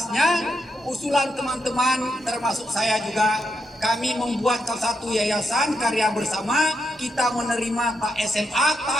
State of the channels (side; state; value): both; normal; correlation 0.81